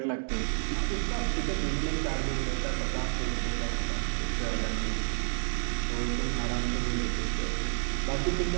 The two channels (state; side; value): silent; left; digital silence